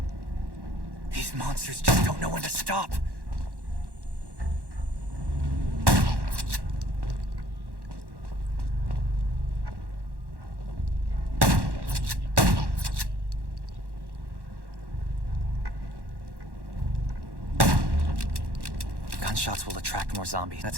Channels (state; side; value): late; left; 1.1 ms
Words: These monsters just don't know when to stop. Gunshots will attract more zombies.